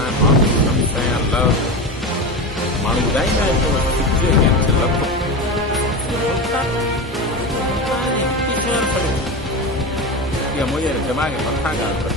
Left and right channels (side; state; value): both; normal; correlation 0.22